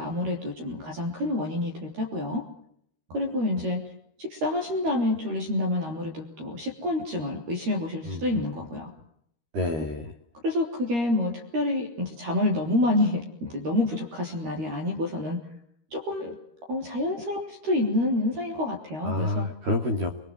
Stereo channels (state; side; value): late; left; 13 ms